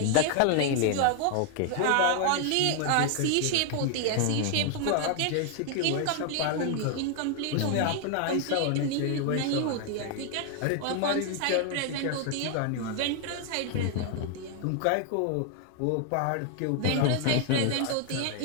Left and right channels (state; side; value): different; both; correlation 0.00